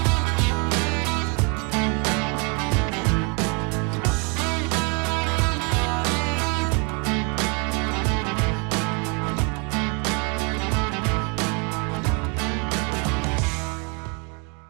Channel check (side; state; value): left; quieter; 34.3 dB